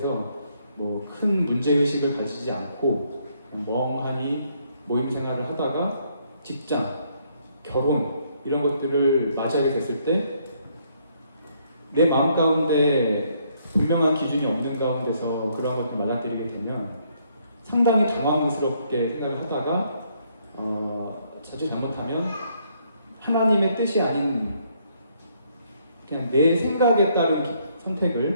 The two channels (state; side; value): inverted; both; correlation -0.70